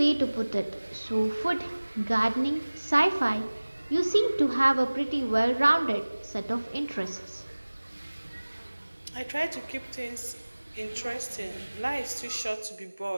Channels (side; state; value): both; inverted; correlation -1.00